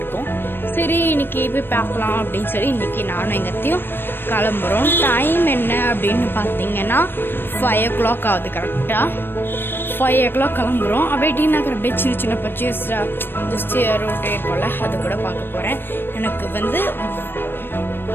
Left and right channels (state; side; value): late; right; 0.098 ms